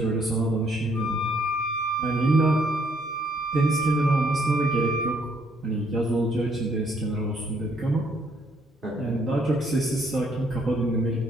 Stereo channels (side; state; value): both; normal; correlation 0.68